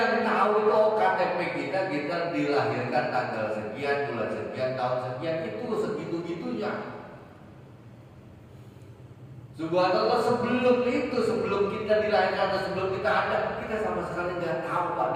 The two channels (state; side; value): identical; both; correlation 1.00